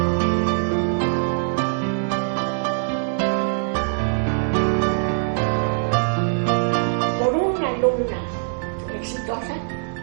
Por una alumna exitosa,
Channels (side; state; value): left; silent; digital silence